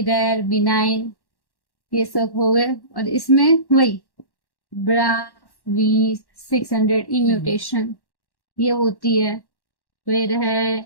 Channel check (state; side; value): late; right; 1.1 ms